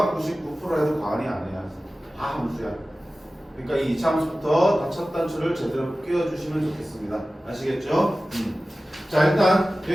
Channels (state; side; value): normal; both; correlation 0.96